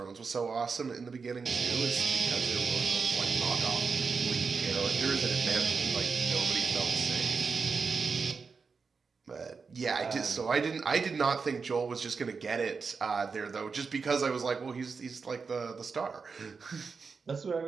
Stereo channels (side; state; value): left; quieter; 5.1 dB